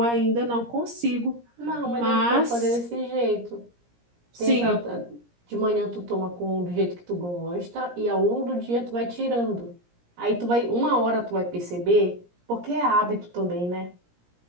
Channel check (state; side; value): late; left; 17 ms